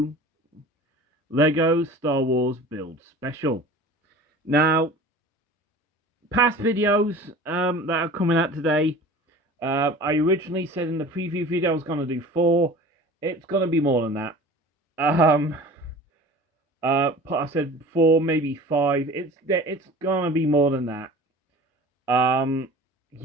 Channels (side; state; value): both; normal; correlation 0.41